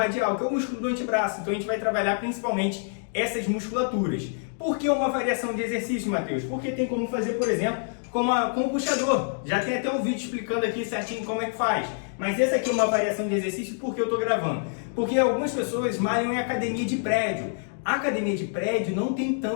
que é o músculo do antebraço. Então a gente vai trabalhar principalmente essas musculaturas. Por que uma variação de exercício, Matheus? Porque tem como fazer, por exemplo, com o puxador. Já tem até um vídeo explicando aqui certinho como é que faz. Mas essa aqui é uma variação de exercício porque eu estou gravando. Porque algumas pessoas malham em academia de prédio. A academia de prédio não tem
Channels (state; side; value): silent; right; digital silence